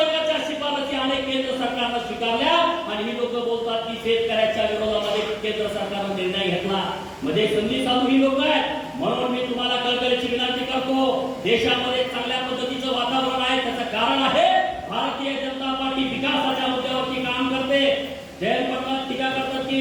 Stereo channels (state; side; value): identical; both; correlation 1.00